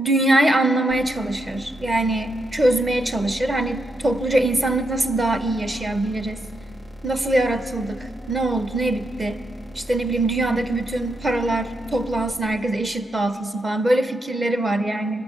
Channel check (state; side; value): normal; both; correlation 0.82